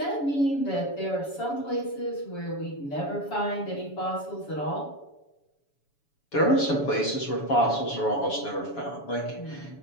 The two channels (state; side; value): late; right; 7.0 ms